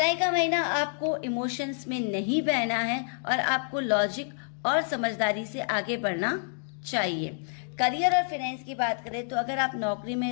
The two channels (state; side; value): silent; right; digital silence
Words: का महीना आपको इमोशंस में नहीं बहना है और आपको लॉजिक और समझदारी से आगे बढ़ना चाहिए। करियर और फाइनेंस की बात करें तो अगर आप नौकरी में